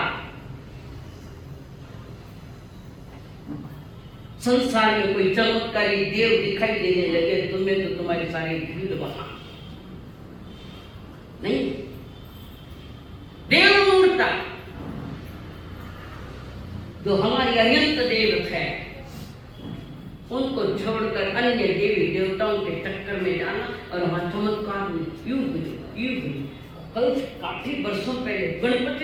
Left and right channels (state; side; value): identical; both; correlation 1.00